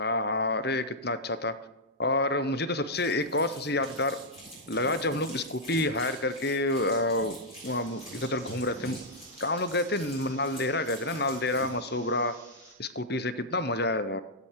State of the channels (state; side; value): normal; both; correlation -0.05